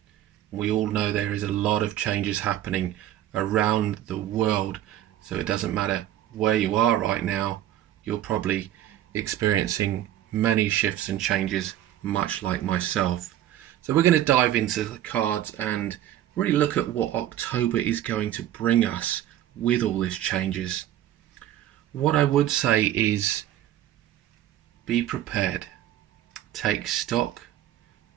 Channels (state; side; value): quieter; left; 12.4 dB